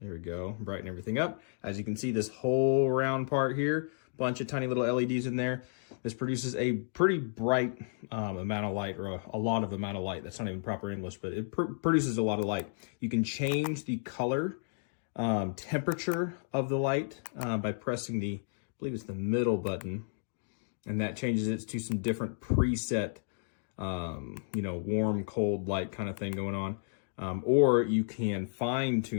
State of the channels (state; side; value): silent; right; digital silence